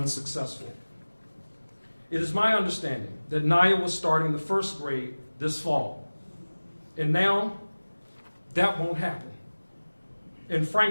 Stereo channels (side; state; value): both; inverted; correlation -1.00